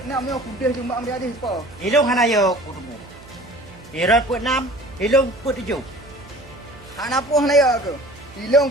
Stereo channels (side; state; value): right; noise; hum, 22 dB below the sound